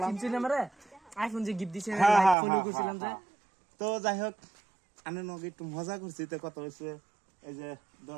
চিনছেন আমারে আইফোন যে গিফট দিছিলেন হ্যাঁ, লাইক হ্যাঁ, ফলো হ্যাঁ, করছিলাম যে। হ্যাঁ। তো যাই হোক, আমি নগে একটু মজা করছি। তো কত হয়েছে এই যে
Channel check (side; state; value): left; drops out; at 2.4 s